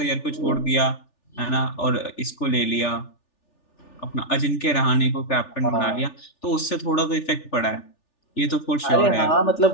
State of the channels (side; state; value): right; late; 3.4 ms